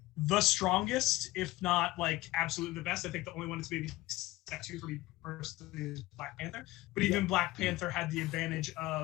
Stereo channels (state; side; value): quieter; right; 18.5 dB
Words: the strongest, if not like absolutely the best. I think the only one that's maybe step two for me personally is Black Panther. But even Black Panther had the advantage